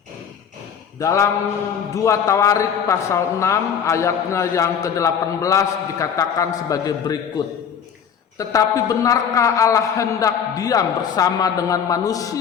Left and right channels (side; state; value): right; quieter; 7.7 dB